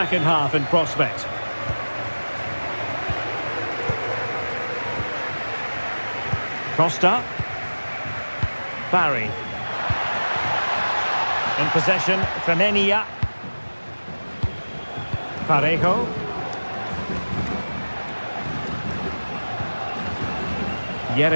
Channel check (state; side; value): inverted; both; correlation -1.00